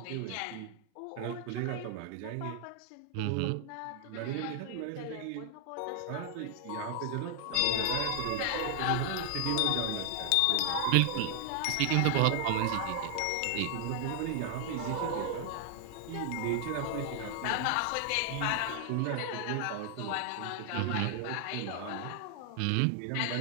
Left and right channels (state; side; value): different; both; correlation 0.00